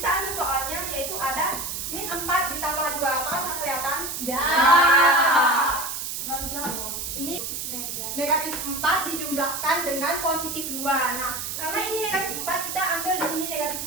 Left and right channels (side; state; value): right; noise; hiss, 5 dB below the sound